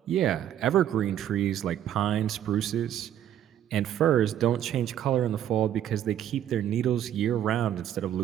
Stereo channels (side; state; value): left; quieter; 10.7 dB